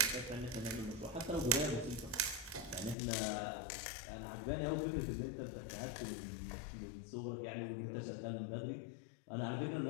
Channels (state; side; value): drops out; right; at 3.0 s